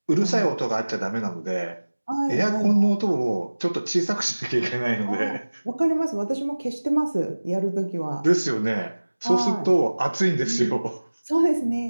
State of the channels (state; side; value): inverted; both; correlation -1.00